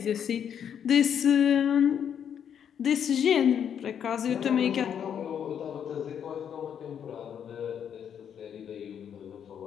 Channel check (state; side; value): quieter; right; 8.5 dB